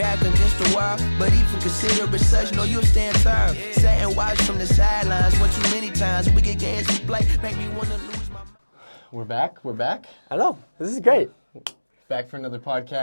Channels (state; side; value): inverted; both; correlation -1.00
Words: against the wall, but even consider it such, know you'll stand tall. Sit and watch from the sidelines, one too many times, we get games we play, make me wanna lose my mind. We're back. I know. This is great. Back for another